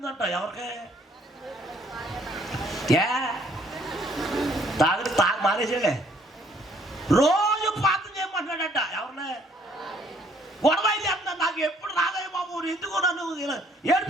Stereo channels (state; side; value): normal; both; correlation 0.63